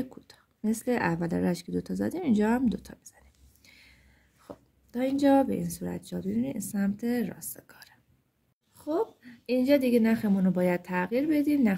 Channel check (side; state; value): both; identical; correlation 1.00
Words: کوتاه، مثل اول رشت که 2 تا زدیم اینجا هم 2 تا میزنیم. خب تا اینجا به این صورت جا ببینید سمت راست کاره. خب اینجا دیگه نخمون رو باید تغییر بدیم،